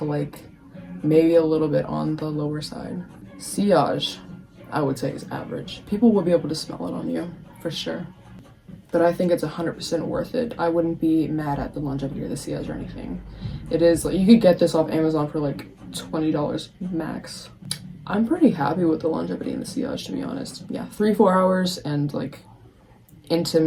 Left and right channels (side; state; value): both; identical; correlation 1.00